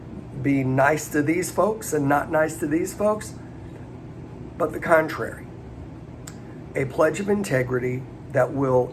be nice to these folks and not nice to these folks, but the contrary. A pledge of integrity that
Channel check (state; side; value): identical; both; correlation 1.00